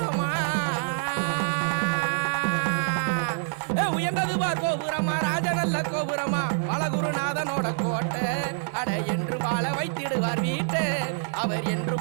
உயர்ந்ததுவா கோபுரமா ராஜா நல்ல கோபுரமா பலகுருநாதனோட கோட்டை அட என்று வாழ வைத்திடுவார் வீட்டு அவர் என்று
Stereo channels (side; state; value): left; silent; 61 dB below the other